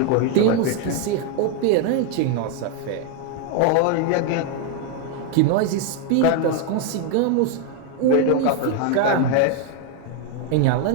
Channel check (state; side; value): different; both; correlation 0.01